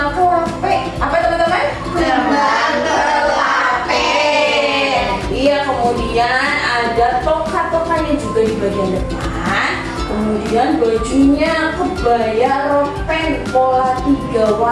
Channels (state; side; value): identical; both; correlation 1.00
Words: kelape. Apa teman-teman? Kembang kelape. Iya, kemudian ada toka-tokanya juga di bagian depan. Kemudian bajunya kebaya ropen pola 3